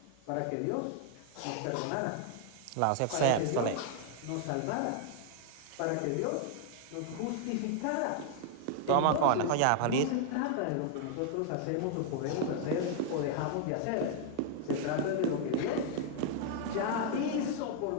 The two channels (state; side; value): different; both; correlation 0.00